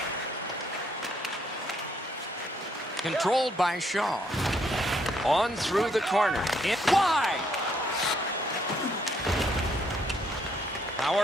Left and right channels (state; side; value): normal; both; correlation 0.71